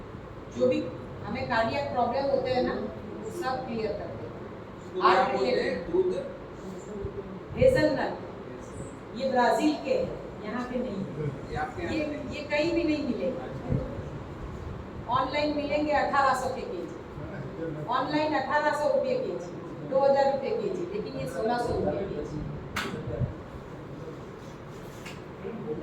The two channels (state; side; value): identical; both; correlation 1.00